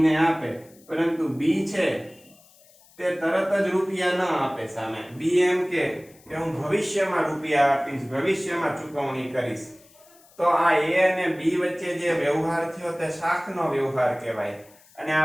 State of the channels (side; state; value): left; noise; hiss, 27 dB below the sound